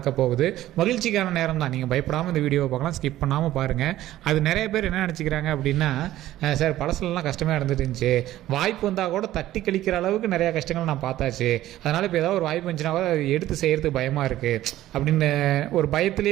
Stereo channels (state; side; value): quieter; left; 14.4 dB